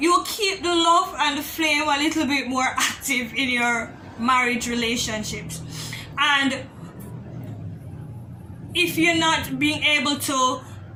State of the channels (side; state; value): both; identical; correlation 1.00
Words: will keep the love and the flame a little bit more active in your marriage relationships. And if you're not being able to